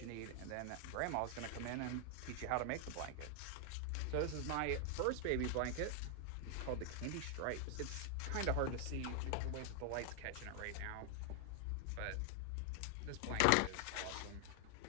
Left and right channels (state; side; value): different; both; correlation 0.00